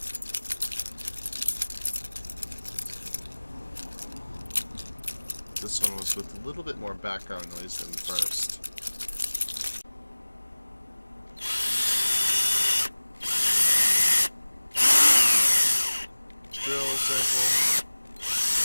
This one was with a little bit more background noise than the first. Drill sample.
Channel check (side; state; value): both; inverted; correlation -1.00